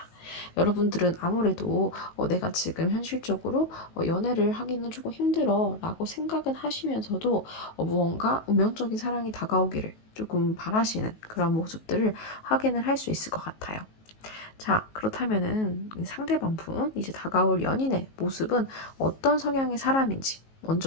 여러분들은 아무래도 내가 지금 현실적으로 연애를 하기는 조금 힘들어 라고 생각은 하시면서도 무언가 운명적인 사랑이 다가오기를 조금 바라시는 그런 모습들을 확인을 할 수 있을 것 같아요. 자, 그렇다면은 상대방 분, 이제 다가올 연인의 모습은 어떤 성향의 사람인지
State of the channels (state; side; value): late; right; 19 ms